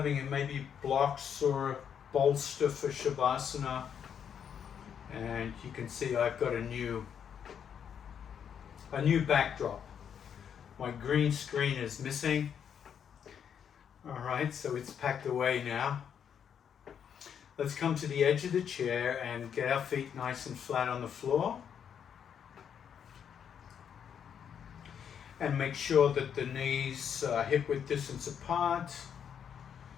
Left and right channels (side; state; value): right; quieter; 8.1 dB